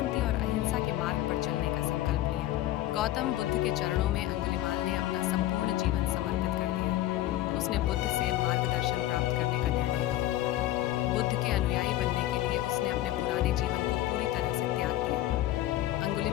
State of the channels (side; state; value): right; quieter; 14.4 dB